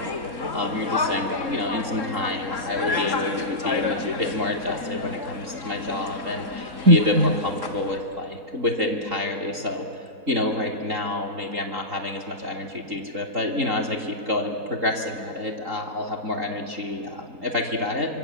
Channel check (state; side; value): late; left; 3.8 ms